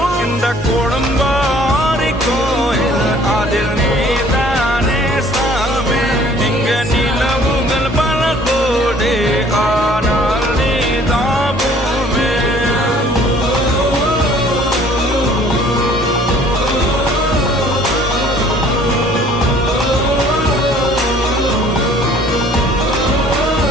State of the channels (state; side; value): normal; both; correlation 0.55